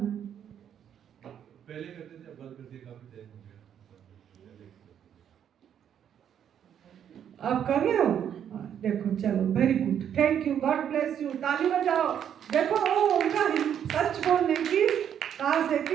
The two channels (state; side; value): quieter; left; 9.1 dB